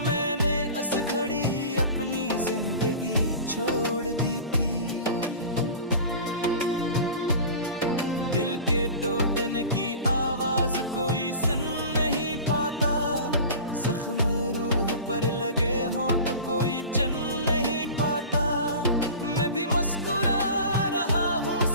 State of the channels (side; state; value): both; inverted; correlation -0.36